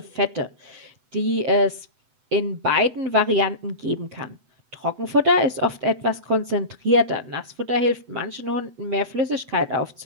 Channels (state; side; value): late; left; 7.9 ms